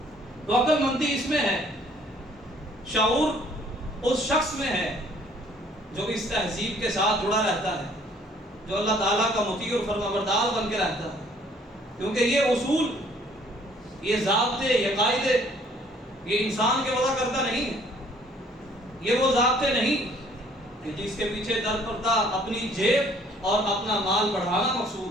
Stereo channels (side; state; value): both; normal; correlation 0.59